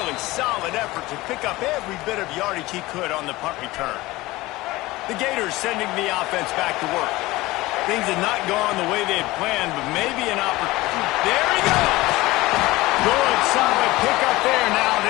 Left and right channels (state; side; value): quieter; right; 19.5 dB